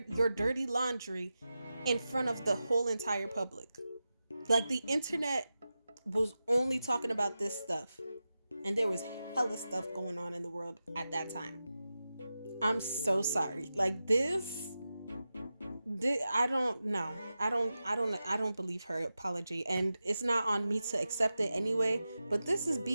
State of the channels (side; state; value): both; inverted; correlation -0.92